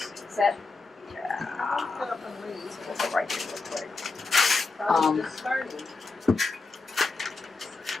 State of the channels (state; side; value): quieter; right; 3.9 dB